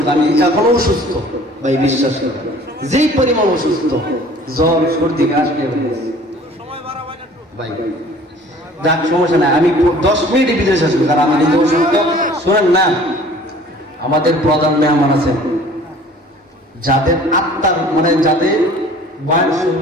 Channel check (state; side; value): normal; both; correlation 0.50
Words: আমি এখনো অসুস্থ ভাই, বিশ্বাস করে যেই পরিমাণ অসুস্থ, জ্বর সর্দি কাশ ভাই, যাক সমস্যা নাই, আমি 10 মিনিটের ভিতরে শেষ করি, কারণ আমি নিজে অসুস্থ। শোনেন না, আমাদের প্রধান মেহমান আছেন যাদের আত্মার মানে যাদের বয়ান